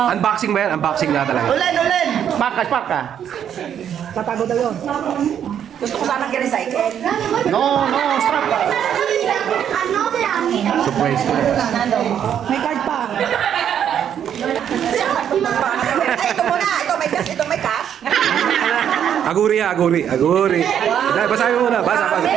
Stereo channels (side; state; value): left; quieter; 9.2 dB